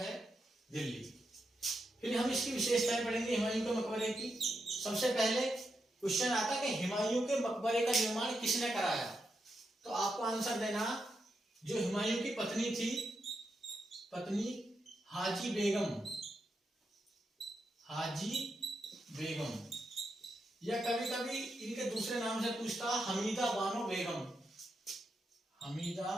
दिल्ली। फिर हम इसकी विशेषताएं पढ़ेंगे हुमायूं के मकबरे की। सबसे पहले क्वेश्चन आता कि हुमायूं के मकबरे का निर्माण किसने कराया। तो आपको आंसर देना, जो हुमायूं की पत्नी थी, पत्नी हाजी बेगम, या कभी कभी इनके दूसरे नाम से पूछता हमीदा बानो बेगम।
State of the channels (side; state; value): both; normal; correlation 0.85